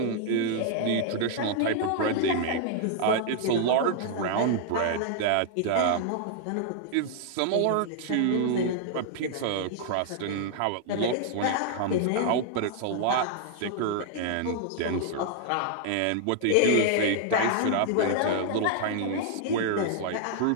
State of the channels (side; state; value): both; different; correlation -0.01